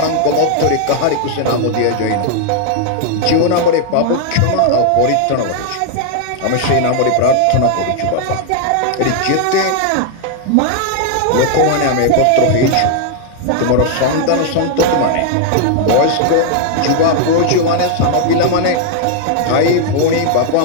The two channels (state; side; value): different; both; correlation 0.00